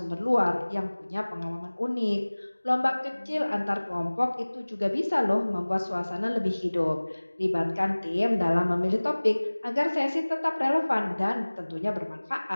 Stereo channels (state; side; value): inverted; both; correlation -1.00